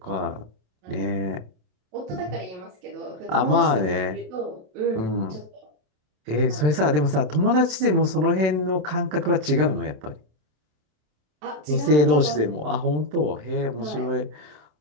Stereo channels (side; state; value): left; late; 27 ms